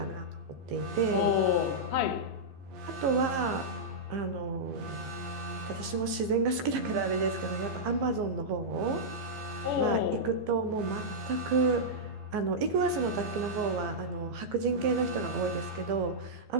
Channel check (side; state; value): left; late; 15 ms